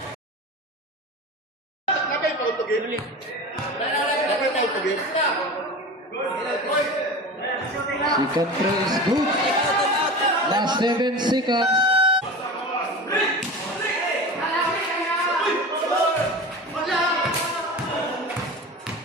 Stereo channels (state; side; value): normal; both; correlation 0.31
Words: Nakay pa ito game. Nakay pa ito game. Second throw is good. Last 7 seconds.